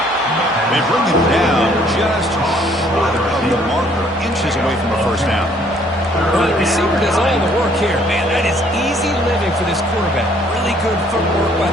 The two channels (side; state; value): both; normal; correlation 0.62